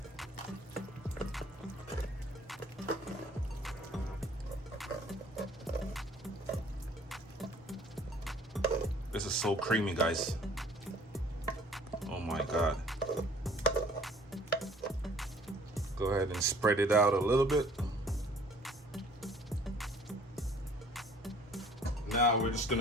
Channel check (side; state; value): both; normal; correlation 0.54